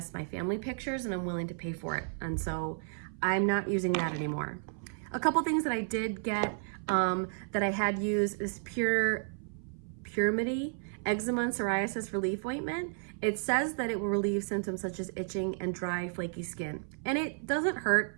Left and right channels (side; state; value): left; silent; 56 dB below the other